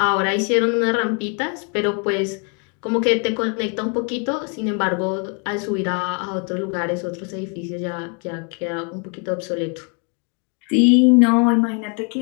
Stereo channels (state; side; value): quieter; right; 36.5 dB